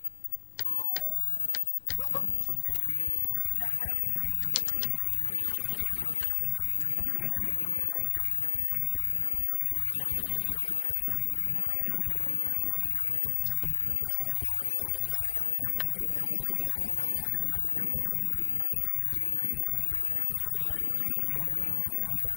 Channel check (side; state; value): right; silent; 57 dB below the other